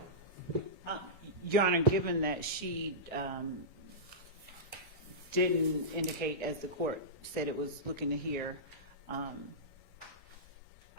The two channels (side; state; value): both; normal; correlation -0.16